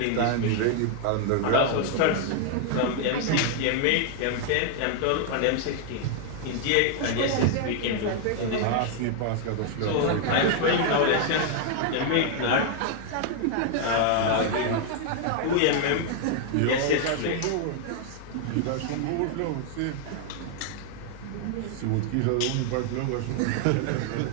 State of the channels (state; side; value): different; both; correlation 0.00